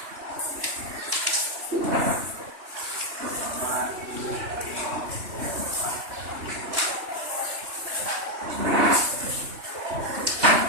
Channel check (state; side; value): late; left; 3.1 ms